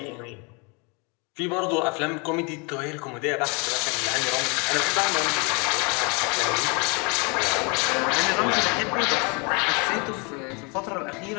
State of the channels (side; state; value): right; quieter; 31.6 dB